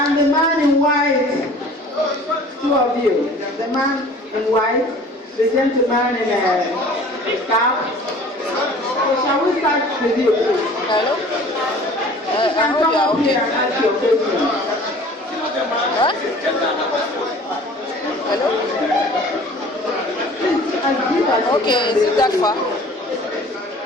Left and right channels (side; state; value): both; normal; correlation 0.47